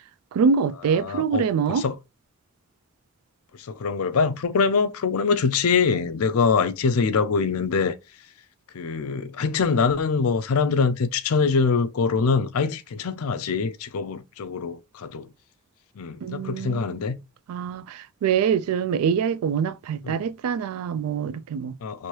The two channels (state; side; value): normal; both; correlation -0.05